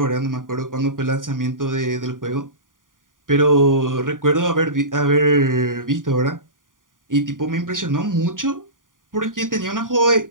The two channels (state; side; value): late; left; 0.89 ms